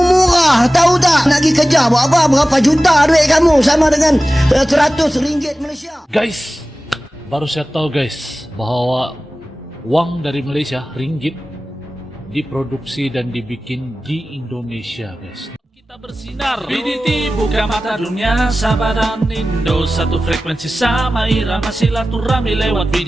Tahu tak? Nak pergi kerja buat apa? Berapa juta duit kamu sama dengan RM100 Malaysia. Guys, baru saya tahu guys bahwa uang dari Malaysia, ringgit, diproduksi dan dibikin di Indonesia guys. Kita bersinar, BDT buka mata dunia, Sabah dan Indo satu frekuensi sama irama silaturahmi lewat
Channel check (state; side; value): normal; both; correlation 0.96